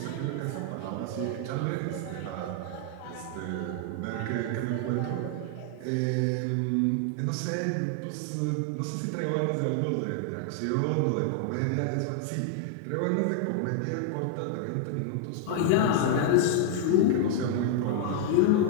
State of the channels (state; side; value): different; both; correlation 0.00